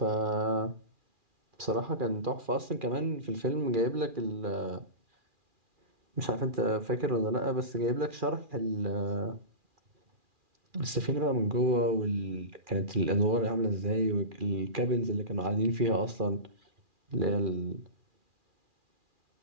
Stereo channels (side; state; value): left; late; 2.4 ms